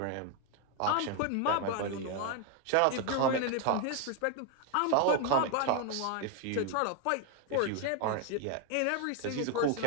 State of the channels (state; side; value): different; both; correlation 0.01